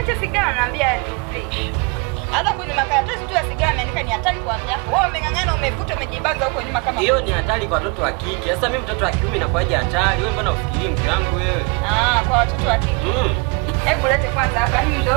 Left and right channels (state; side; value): quieter; left; 31.3 dB